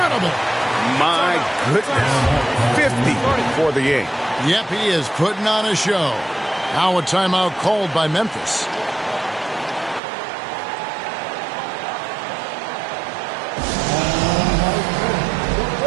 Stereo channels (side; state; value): left; drops out; at 10.0 s